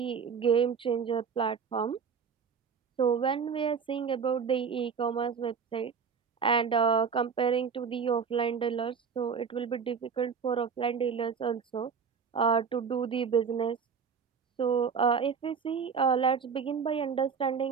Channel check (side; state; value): left; quieter; 6.3 dB